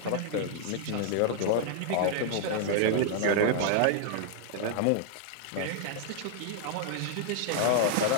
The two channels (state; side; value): different; both; correlation -0.01